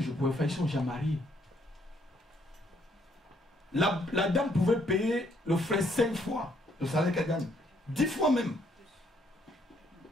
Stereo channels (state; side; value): normal; both; correlation 0.69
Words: je pouvais faire? Ils sont déjà mariés. La dame pouvait payer le frère 5 fois le salaire qu'elle gagne. 10 fois même.